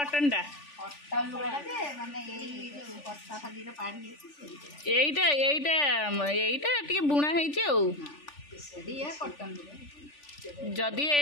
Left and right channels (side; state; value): right; late; 3.4 ms